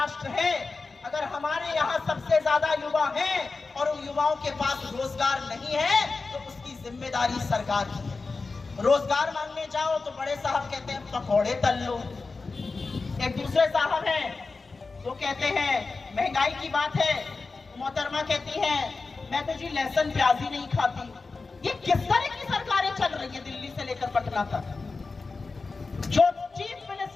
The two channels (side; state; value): right; quieter; 4.0 dB